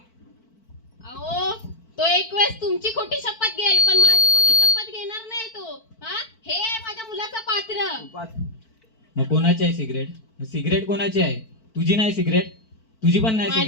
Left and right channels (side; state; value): right; late; 4.5 ms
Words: अहो तो एक वेळेस तुमची खोटी शपथ घेईल, पण माझी खोटी शपथ घेणार नाही तो. हा हे आहे माझ्या मुलाचं पात्र. मग कोणाची आहे सिगरेट कोणाची आहे? तुझी नाही सिगरेट? तुझी पण नाही माझी